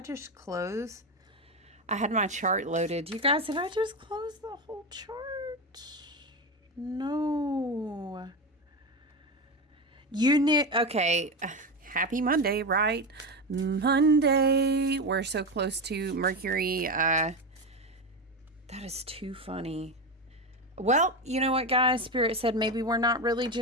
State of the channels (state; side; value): normal; both; correlation 0.17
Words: just close? I had my chart loaded. You guys, did I just close the whole chart? No. You need, okay. Happy Monday, right? Monday. We're so close to Mercury. That is too funny. Well, you know what, guys? Spirit said maybe we're not really